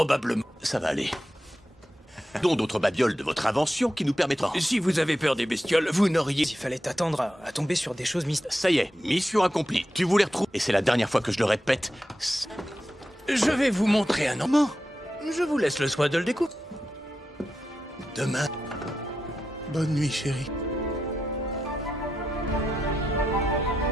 Ça va aller. Dont d'autres babioles de votre invention qui nous permettront... Si vous avez peur des bestioles, vous n'auriez... Il fallait t'attendre à tomber sur des choses mystérieuses. Ça y est, mission accomplie. Tu voulais retrouver... Et c'est la dernière fois que je le répète. Je vais vous montrer un moment. Je vous laisse le soin de le découvrir. Demain... Bonne nuit, chérie.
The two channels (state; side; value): normal; both; correlation 0.88